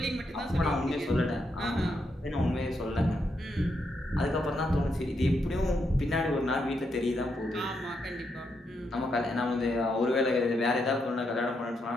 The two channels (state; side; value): normal; both; correlation 0.80